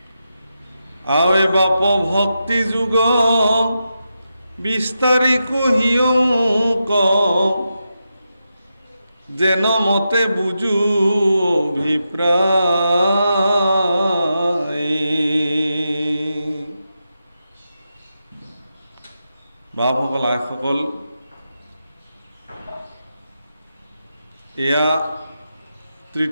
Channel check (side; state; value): both; inverted; correlation -0.88